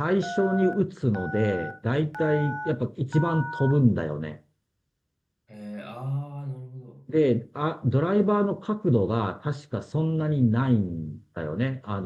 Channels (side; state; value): both; identical; correlation 1.00